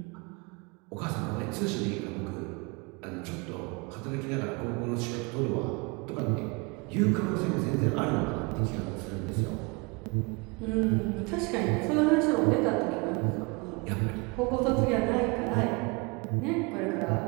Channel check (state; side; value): quieter; left; 28.9 dB